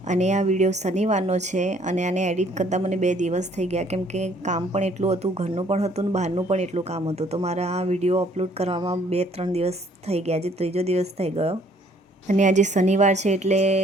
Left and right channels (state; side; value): normal; both; correlation 0.61